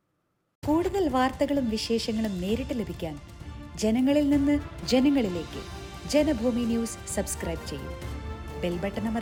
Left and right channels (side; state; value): both; identical; correlation 1.00